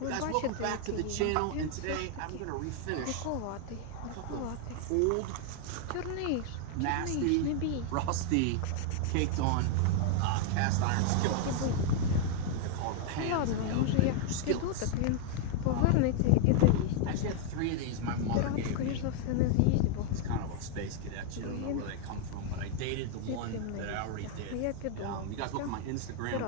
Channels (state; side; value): different; both; correlation 0.00